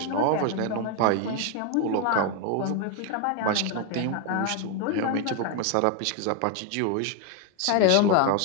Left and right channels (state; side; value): different; both; correlation 0.01